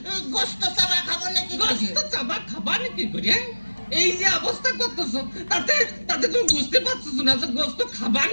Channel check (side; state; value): both; inverted; correlation -1.00